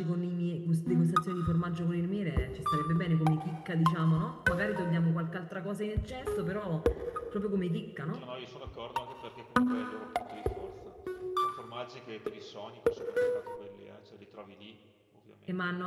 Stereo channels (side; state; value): both; identical; correlation 1.00